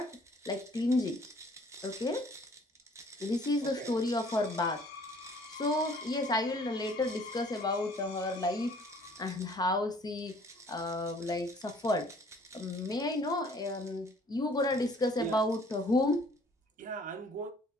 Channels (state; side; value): normal; both; correlation 0.56